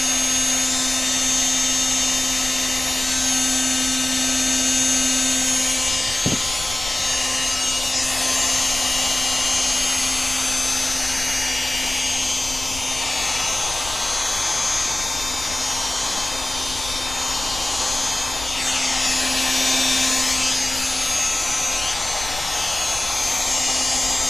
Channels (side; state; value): left; noise; rumble, 13 dB below the sound